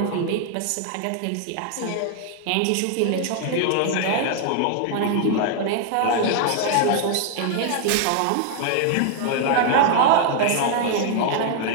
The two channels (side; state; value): both; different; correlation 0.00